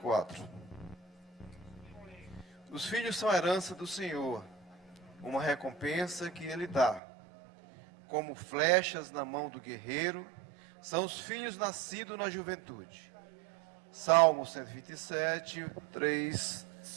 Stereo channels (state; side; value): drops out; left; at 7.0 s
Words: Os filhos são a herança do Senhor, uma recompensa que Ele dá. Como flechas na mão do guerreiro, são os filhos nascidos na juventude. Salmo 127, 3,